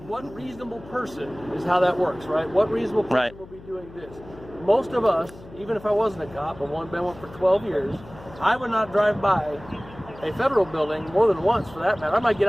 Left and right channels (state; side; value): noise; left; hum, 19 dB below the sound